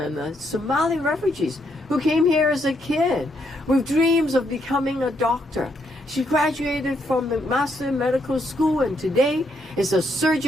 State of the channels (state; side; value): normal; both; correlation 0.76